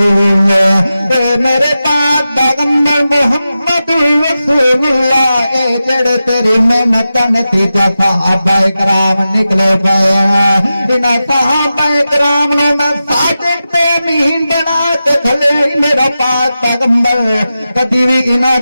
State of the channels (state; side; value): inverted; both; correlation -0.92